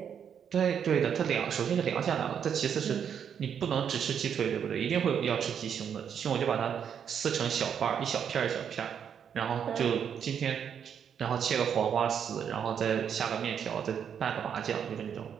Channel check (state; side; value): quieter; left; 8.0 dB